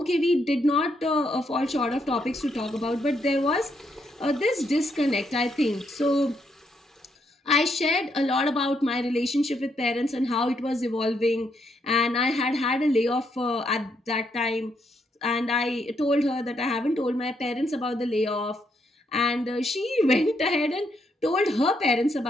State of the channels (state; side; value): normal; both; correlation 0.76